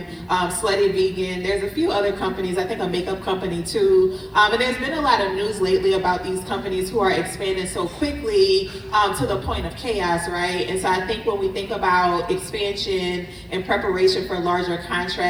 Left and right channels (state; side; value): identical; both; correlation 1.00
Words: Slutty Vegan, there's a few other companies, I think a makeup company too. And there's been a lot of news lately about these companies who are expanding so quickly to the point of chaos, right? And so I think when we think about expansion and preparation for larger